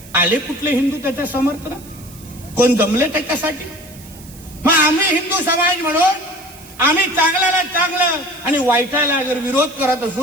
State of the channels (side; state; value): right; noise; hiss, 20 dB below the sound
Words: आले कुठले हिंदू त्याच्या समर्थनात? कोण जमले त्याच्यासाठी? मग आम्ही हिंदू समाज म्हणून आम्ही चांगल्याला चांगलं आणि वाईटाला जर विरोध करत